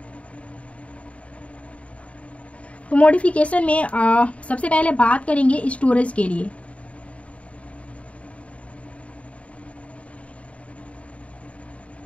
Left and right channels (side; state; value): right; late; 0.065 ms